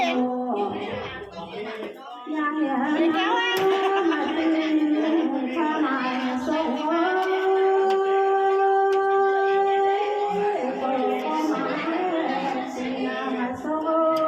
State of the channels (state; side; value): identical; both; correlation 1.00